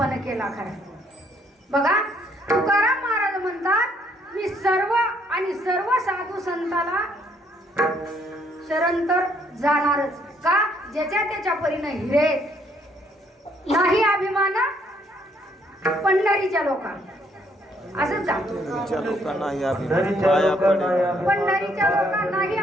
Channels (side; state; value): both; normal; correlation 0.68